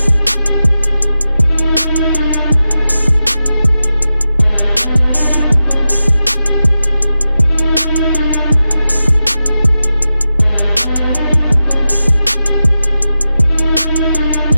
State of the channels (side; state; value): both; inverted; correlation -0.92